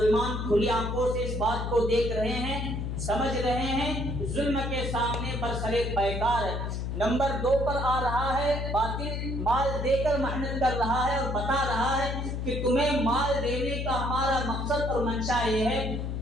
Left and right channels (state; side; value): noise; left; hum, 3 dB below the sound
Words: کھلی آنکھوں سے اس بات کو دیکھ رہے ہیں، سمجھ رہے ہیں، ظلم کے سامنے برسرے پیکار ہے۔ نمبر 2 پر آ رہا ہے باطل مال دے کر محنت کر رہا ہے اور بتا رہا ہے کہ تمہیں مال دینے کا ہمارا مقصد اور منشا یہ ہے،